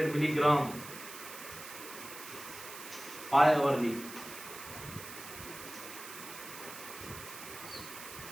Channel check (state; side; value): noise; right; hiss, 12 dB below the sound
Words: milligram 5 hourly.